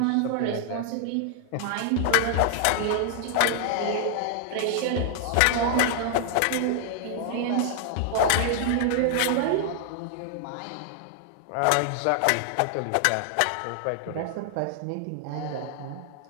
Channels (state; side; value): different; both; correlation 0.00